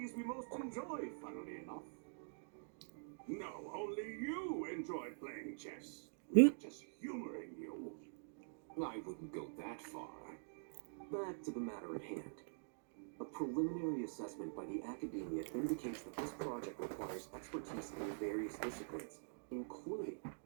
we most enjoy, funnily enough. No, only you enjoy playing chess. We're just humoring you. I wouldn't go that far. Back to the matter at hand. A preliminary assessment by the Academia indicates that this project requires expertise in various disciplines, including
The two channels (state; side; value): silent; left; digital silence